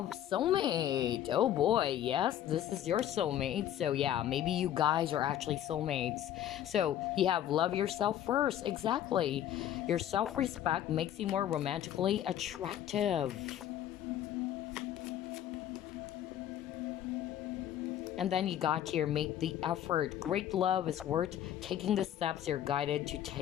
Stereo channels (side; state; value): right; quieter; 11.2 dB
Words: soulmate. Oh boy, yes, this is your soulmate. So yeah, maybe you guys are actually soulmates. So you have love yourself first. Exactly. Your self-respect makes you more romantically attractive. And then you got here, make the effort. Great love is worth taking the steps you're guided to